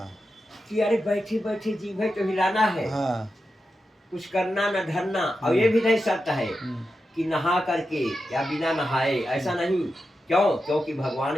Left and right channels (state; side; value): normal; both; correlation 0.90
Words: कि अरे बैठे बैठे जी भाई तो हिलाना है, हाँ। कुछ करना न धरना। और ये भी नहीं शर्त है हम्म, कि नहा करके या बिना नहाए, ऐसा नहीं। क्यों? क्योंकि